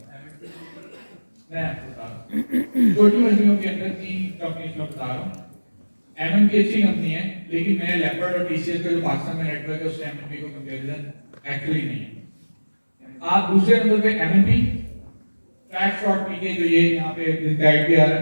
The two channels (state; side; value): inverted; both; correlation -1.00